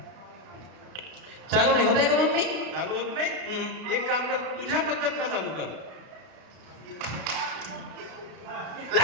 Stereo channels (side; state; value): left; late; 32 ms